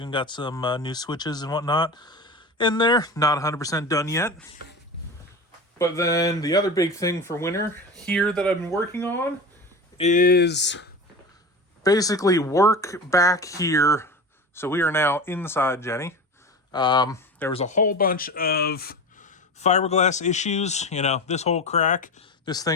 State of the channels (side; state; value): both; normal; correlation 0.30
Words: got some new switches and whatnot in there. Not 100% done yet. But then the other big thing for winter here that I've been working on is basically work back here. So we are now inside Jenny. There was a whole bunch of fiberglass issues. You know, this whole crack, this